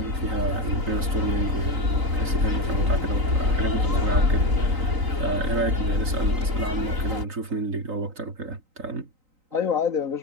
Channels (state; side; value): late; left; 3.9 ms